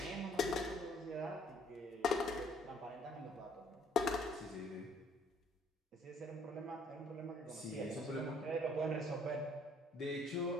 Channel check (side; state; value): both; normal; correlation 0.61